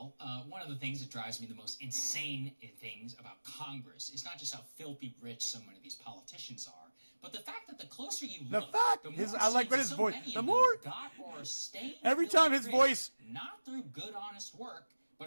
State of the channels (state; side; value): inverted; both; correlation -1.00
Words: one of the things that drives me the most insane things about Congress is not just how filthy rich so many of these politicians are, but the fact that the closer you look, the more I like what his voice. The more got or stayed every time his voice, not through good, honest work,